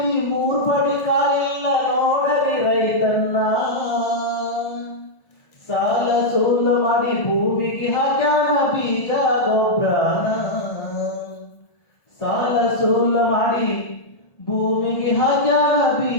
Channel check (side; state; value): right; late; 1.4 ms